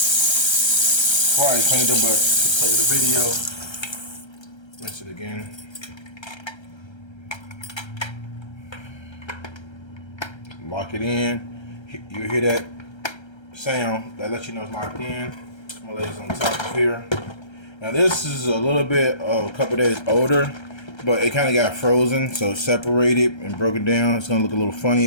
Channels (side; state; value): right; late; 1.3 ms